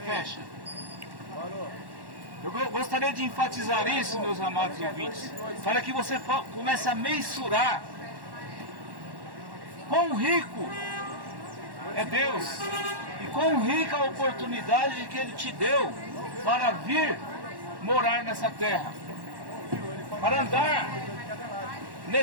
Eu gostaria de enfatizar isso, meus amados ouvintes, para que você comece a mensurar quão rico é Deus e quão rica a oportunidade que Ele te deu para vir morar nessa terra, para andar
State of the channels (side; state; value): left; late; 1.1 ms